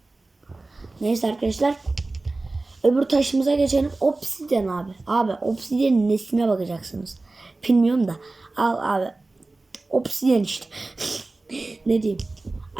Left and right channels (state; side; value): quieter; left; 3.2 dB